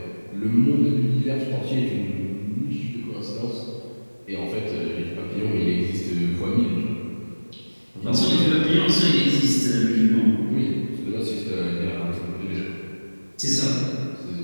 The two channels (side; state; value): both; inverted; correlation -1.00